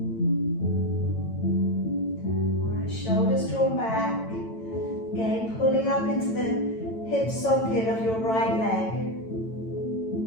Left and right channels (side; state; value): right; late; 9.0 ms